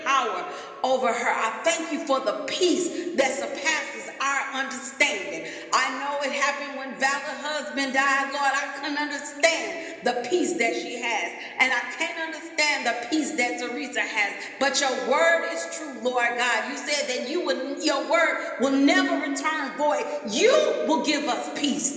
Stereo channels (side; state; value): both; identical; correlation 1.00